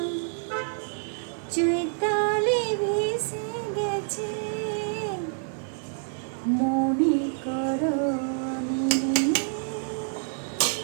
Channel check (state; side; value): silent; left; 60 dB below the other